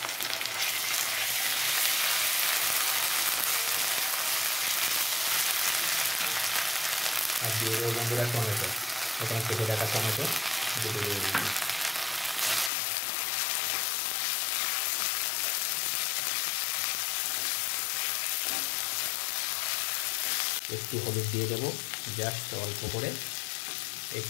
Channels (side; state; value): right; drops out; at 12.7 s